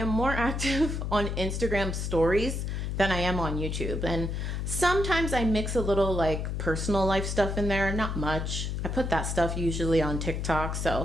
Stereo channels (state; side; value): noise; left; hum, 2 dB below the sound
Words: more active on Instagram stories than I am on YouTube. And sometimes I mix a little like personal life stuff in there, not much. I put that stuff usually on TikTok.